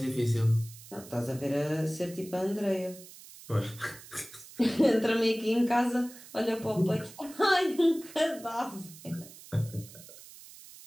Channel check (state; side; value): noise; right; hiss, 18 dB below the sound